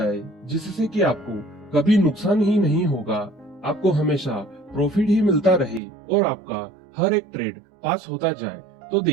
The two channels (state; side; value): drops out; left; at 5.8 s